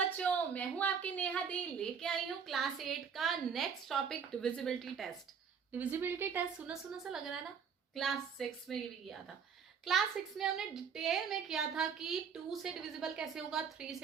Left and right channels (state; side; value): quieter; left; 6.6 dB